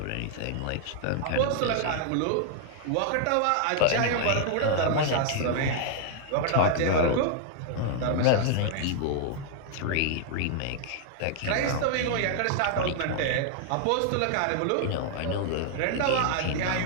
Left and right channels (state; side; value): different; both; correlation 0.00